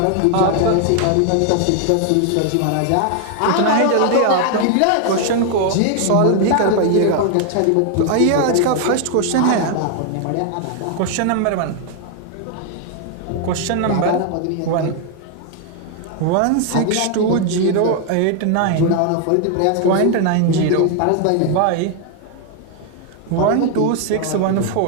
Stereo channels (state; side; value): different; both; correlation 0.00